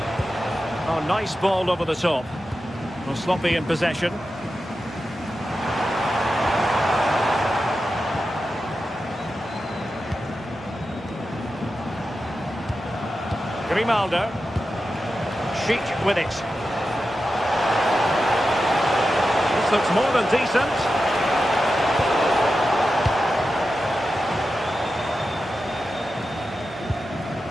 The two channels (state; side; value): normal; both; correlation 0.91